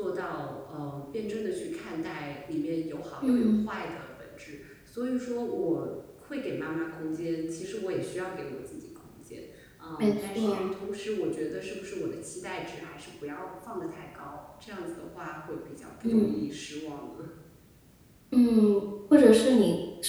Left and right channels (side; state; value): both; identical; correlation 1.00